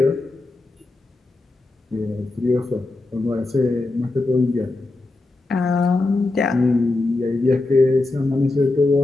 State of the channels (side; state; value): right; quieter; 3.1 dB